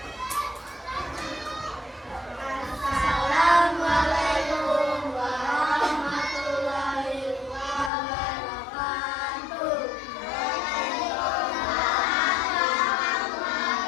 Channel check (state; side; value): drops out; right; at 7.9 s